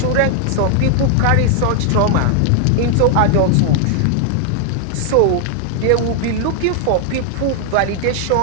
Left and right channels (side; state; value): both; different; correlation 0.00